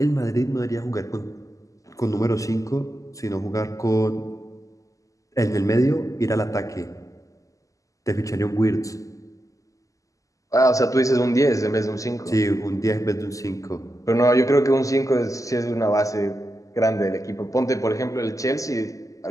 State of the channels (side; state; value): right; late; 0.16 ms